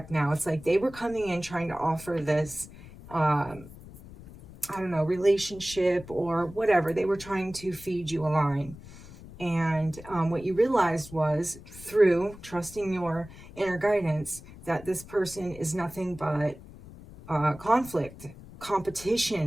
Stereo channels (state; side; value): noise; left; rumble, 17 dB below the sound